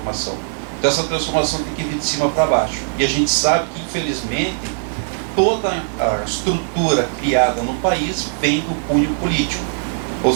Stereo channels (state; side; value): silent; left; digital silence